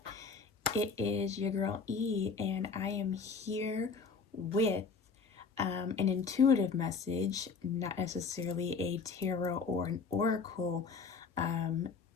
It is your girl E, and I am here with an intuitive message, not necessarily a tarot or an oracle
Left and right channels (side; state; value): right; quieter; 5.0 dB